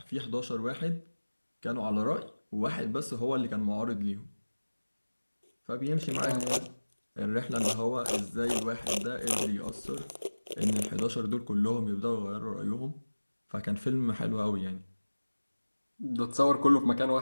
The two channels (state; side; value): inverted; both; correlation -1.00